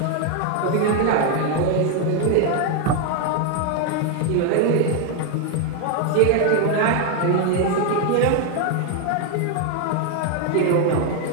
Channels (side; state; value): both; different; correlation 0.01